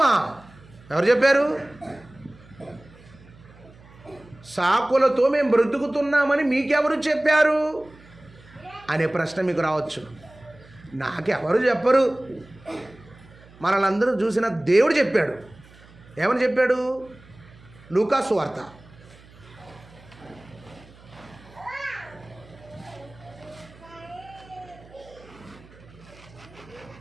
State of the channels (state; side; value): noise; right; hum, 24 dB below the sound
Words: ఎవరు చెప్పారు? సాకులతో మేము బ్రతుకుతున్నామని మీకెవరు చెప్పారు అనే ప్రశ్న మీకు రావచ్చు. నాకెవరు చెప్పరు, మనల్ని చూసిన దేవుడు చెప్పాడు. ఏమని చెప్పాడు? లూకా సువార్త